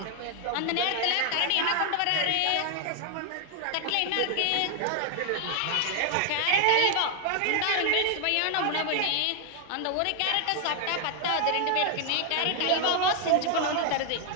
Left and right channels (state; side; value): different; both; correlation 0.00